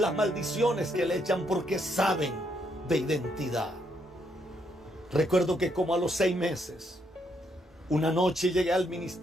maldiciones que le echan, porque saben de identidad. Recuerdo que como a los 6 meses, una noche llegué al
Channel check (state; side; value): normal; both; correlation 0.75